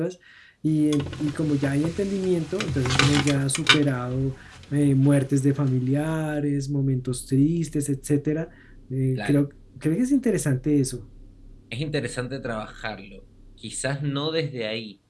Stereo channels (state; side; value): identical; both; correlation 1.00